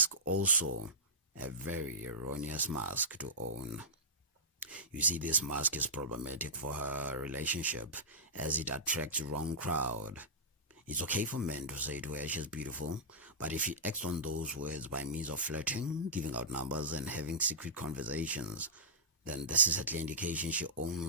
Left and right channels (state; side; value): normal; both; correlation -0.16